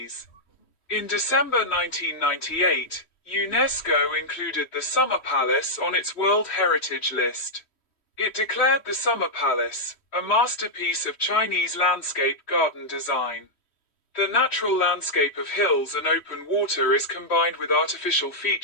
In December 1998, UNESCO included the Summer Palace on its World Heritage List. It declared the Summer Palace a masterpiece of Chinese landscape garden design. The natural landscape of hills and open water is combined with artificial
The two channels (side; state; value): right; late; 3.1 ms